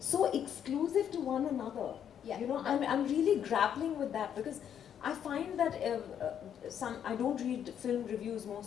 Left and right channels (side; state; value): right; quieter; 9.0 dB